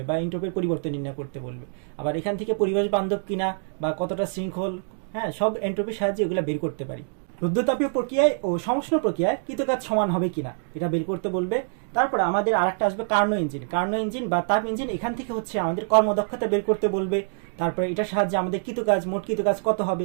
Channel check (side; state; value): left; silent; digital silence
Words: বা এন্ট্রপির পরিবর্তন নির্ণয় করতে বলবে। আবার এখান থেকে পরিবেশ বান্ধব কিনা বা কতটা শৃঙ্খল, সব এন্ট্রপির সাহায্যে এগুলো বের করতে পারি। রুদ্ধতাপীয় প্রক্রিয়ায় ও সমষ্ণ প্রক্রিয়ায় কৃতকাজ সমান হবে কিনা এটা বের করতে বলবে। তারপরে আমাদের আরেকটা আসবে কার্নো ইঞ্জিন বা তাপ ইঞ্জিন। এখান থেকে হচ্ছে আমাদের কর্মদক্ষতা বের করতে বলবে। তারপরে এটার সাহায্যে আমাদের মোট কৃতকাজ কত